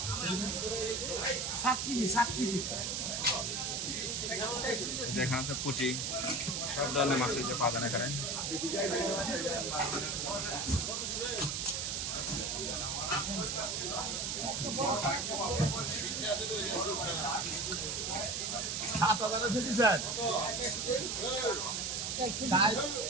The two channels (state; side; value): noise; right; hiss, 1 dB below the sound